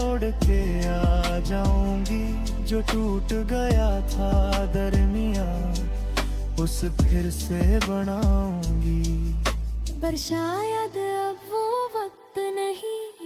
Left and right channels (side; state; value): both; identical; correlation 1.00